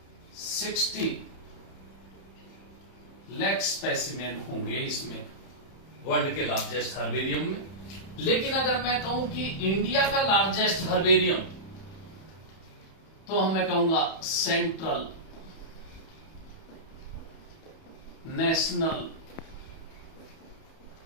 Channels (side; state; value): right; late; 31 ms